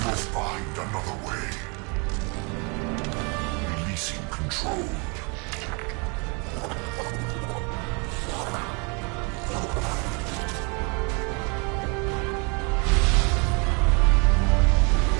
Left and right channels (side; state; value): left; quieter; 32.5 dB